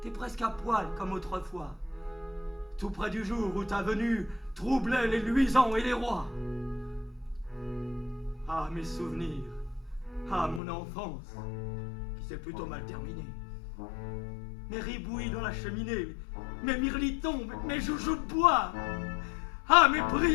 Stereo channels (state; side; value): drops out; right; at 10.6 s